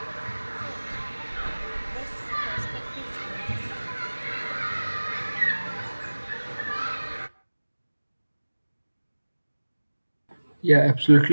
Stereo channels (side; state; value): both; inverted; correlation -1.00